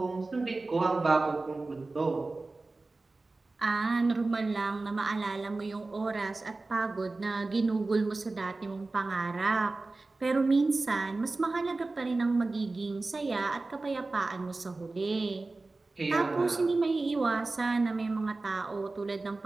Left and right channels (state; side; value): quieter; left; 3.4 dB